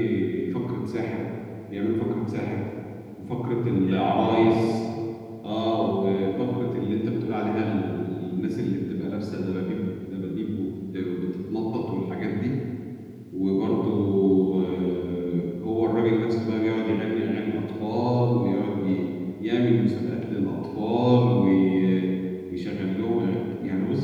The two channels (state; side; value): identical; both; correlation 1.00